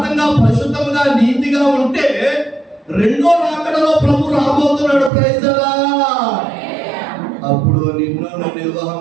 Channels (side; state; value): left; drops out; at 5.1 s